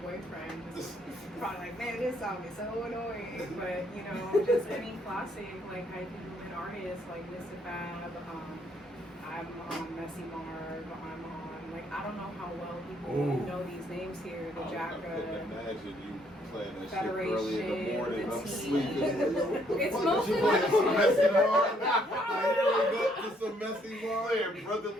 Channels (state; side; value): normal; both; correlation 0.69